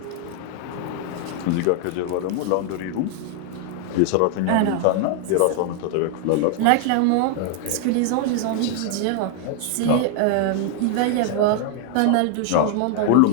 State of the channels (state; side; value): different; both; correlation 0.00